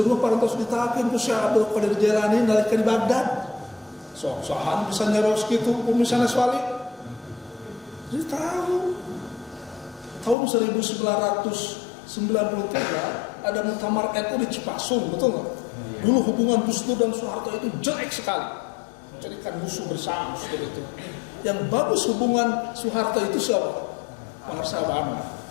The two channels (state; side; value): drops out; right; at 10.4 s